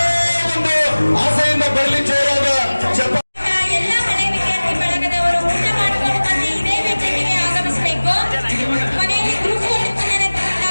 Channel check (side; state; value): both; inverted; correlation -1.00